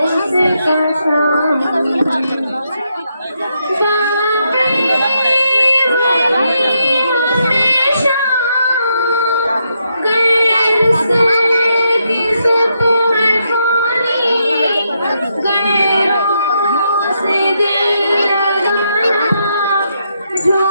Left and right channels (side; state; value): both; inverted; correlation -0.79